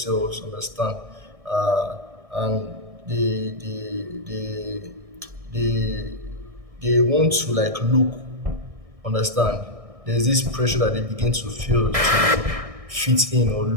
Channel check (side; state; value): left; late; 1.6 ms